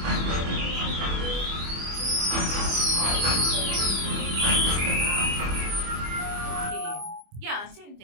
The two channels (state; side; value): late; left; 25 ms